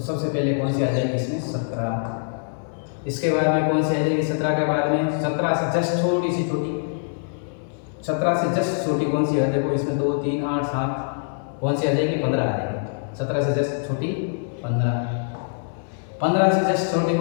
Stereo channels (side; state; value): right; silent; digital silence